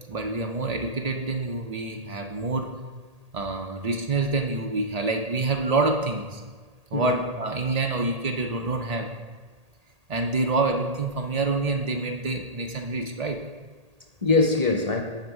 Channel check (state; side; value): late; left; 1.8 ms